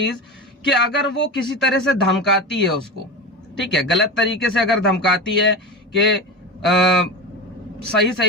कि अगर वो किसी तरह से धमकाती है उसको, ठीक है, गलत तरीके से अगर धमकाती है कि सही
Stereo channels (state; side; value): normal; both; correlation 0.24